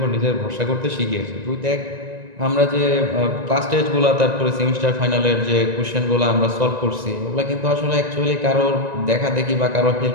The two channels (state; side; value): late; left; 1.9 ms